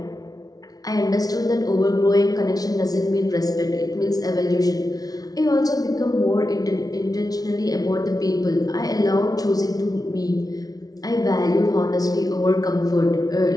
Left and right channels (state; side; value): late; right; 0.18 ms